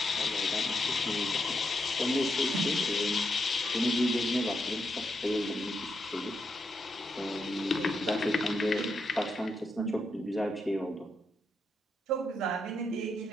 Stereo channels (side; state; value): both; normal; correlation 0.82